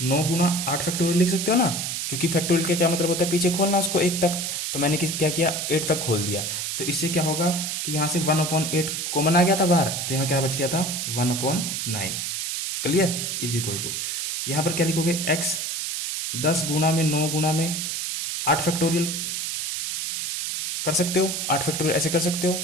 गुना 8 फैक्टोरियल लिख सकते हो ना, क्योंकि फैक्टोरियल का क्या मतलब होता है, पीछे खोलना उसको 1 तक, तो मैंने क्या किया, 8 तक खोल दिया। तो इससे क्या होगा कि यहां से 1/8 कॉमन आ गया था बाहर, तो यहां क्या बच गया था, 1/9, क्लियर, इज इक्वल टू, यहां पर क्या लिखोगे, x 10 गुना में 9 गुना में 8 फैक्टोरियल कर सकते हो, 8 फैक्टोरियल ऐसे कर सकते हो,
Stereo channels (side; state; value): right; noise; hiss, 2 dB below the sound